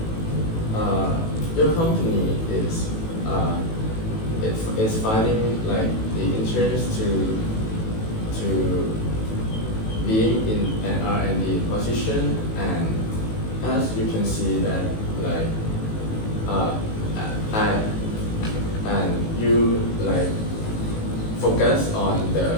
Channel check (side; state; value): right; late; 18 ms